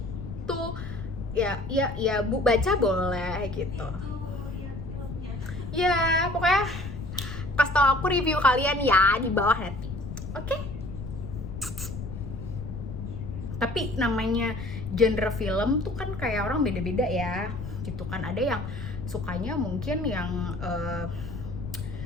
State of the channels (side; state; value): left; noise; rumble, 8 dB below the sound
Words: to ya bu baca boleh gitu. Itu ya filmnya. Ya pokoknya pas tau aku review kalian ya di bawah nanti. Oke? Tapi namanya genre film tuh kan kayak orang beda-beda ya gitu kan. Ada yang sukanya mungkin yang